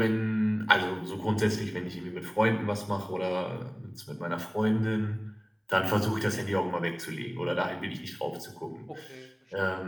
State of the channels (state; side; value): identical; both; correlation 1.00